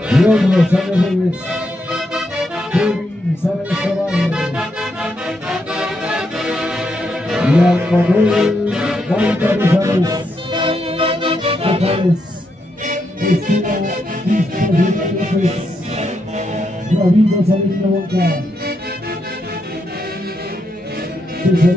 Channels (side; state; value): both; normal; correlation 0.81